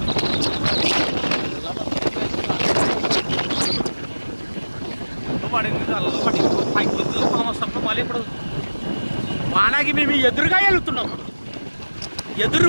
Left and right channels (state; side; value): inverted; both; correlation -1.00